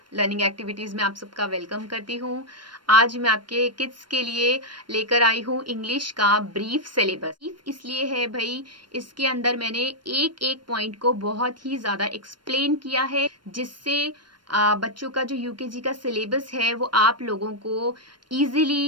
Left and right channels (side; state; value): left; late; 0.72 ms